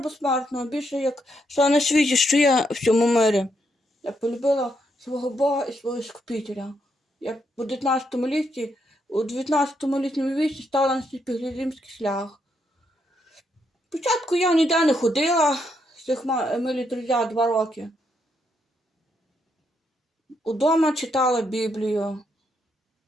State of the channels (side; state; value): both; normal; correlation 0.78